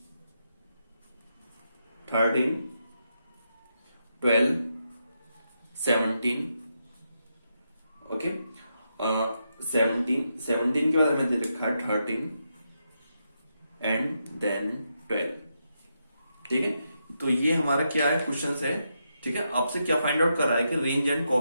13 12 17, ओके। 17 के बाद हमें दे रखा है 13 एंड देन 12, ठीक है। तो ये हमारा क्या है, क्वेश्चन है, ठीक है। आपसे क्या फाइंड आउट कर रहा है कि range and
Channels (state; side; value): inverted; both; correlation -0.83